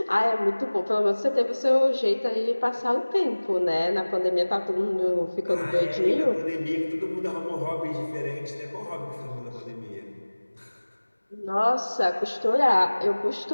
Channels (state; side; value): inverted; both; correlation -1.00